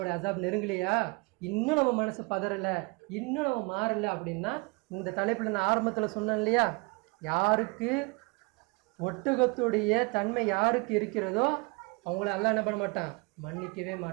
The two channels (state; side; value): quieter; left; 29.1 dB